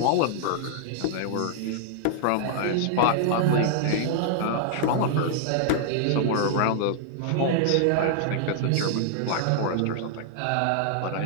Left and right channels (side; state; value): both; different; correlation -0.01